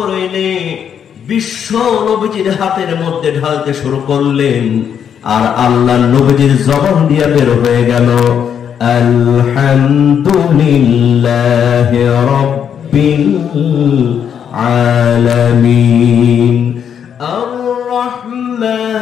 এনে বিশ্ব নবীজির হাতের মধ্যে ঢালতে শুরু করলেন। আর আল্লাহর নবীজির জবান দিয়ে বের হয়ে গেল, আলহামদুলিল্লাহি রাব্বিল আলামিন আর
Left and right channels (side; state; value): right; quieter; 8.2 dB